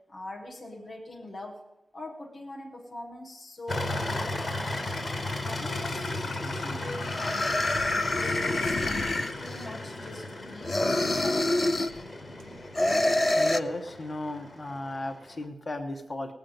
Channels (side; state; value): both; normal; correlation 0.93